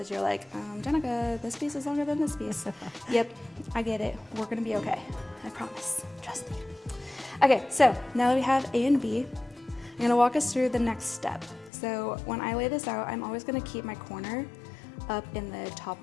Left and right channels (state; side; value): drops out; right; at 11.7 s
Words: you're like, Jenica, this piece is longer than this piece. Yep, I get it. We're going to be okay. I promise. Trust me. Okay, so now that we have A and B, I'm going to walk us through the next step. So when I lay this out, I'm always going to keep my corner up in the top